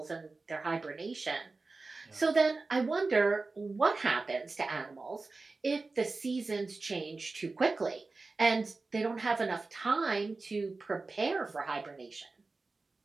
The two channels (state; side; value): quieter; left; 3.7 dB